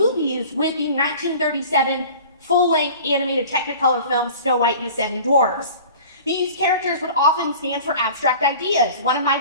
with the 1937 full-length animated Technicolor film Snow White and the Seven Dwarfs. These characters would often stand for abstract ideas. One of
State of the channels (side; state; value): both; inverted; correlation -0.42